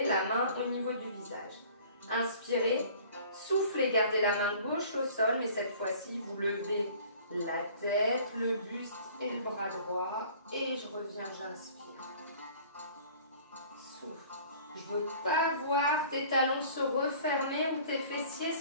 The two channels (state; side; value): inverted; both; correlation -0.50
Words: la main au niveau du visage. Inspirez, soufflez, gardez la main gauche au sol, mais cette fois-ci, vous levez la tête, le buste et le bras droit. Et je reviens, j'inspire. Souffle. Je ne veux pas voir tes talons se refermer ou tes fessiers